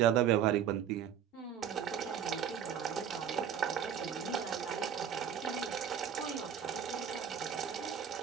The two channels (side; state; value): left; quieter; 8.7 dB